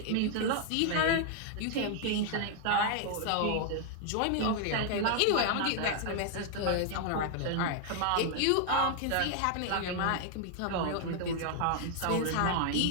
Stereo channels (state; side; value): different; both; correlation 0.00